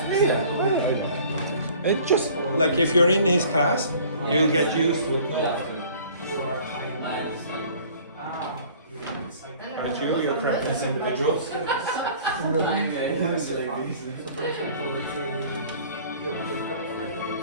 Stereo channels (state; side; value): inverted; both; correlation -0.50